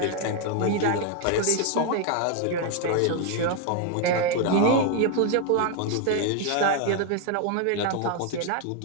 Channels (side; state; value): both; different; correlation 0.00